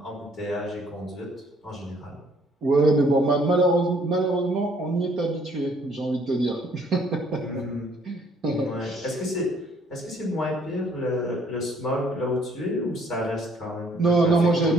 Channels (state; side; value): normal; both; correlation 0.63